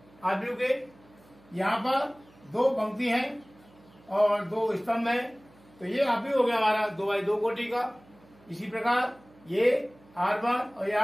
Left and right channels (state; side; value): noise; right; hum, 27 dB below the sound